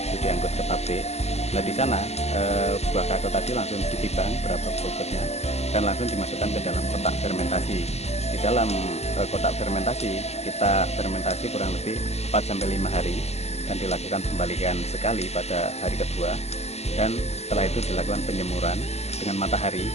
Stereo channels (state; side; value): late; right; 0.31 ms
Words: itu diangkut ke pabrik. Nah, di sana buah kakao tadi langsung ditimbang berapa bobotnya dan langsung dimasukkan ke dalam kotak fermentasi. Di dalam kotak fermentasi kita fermentasi kurang lebih 4-5 hari dan dilakukan pembalikan sekali pada hari kedua, dan setelah itu dilakukan penjemuran dengan matahari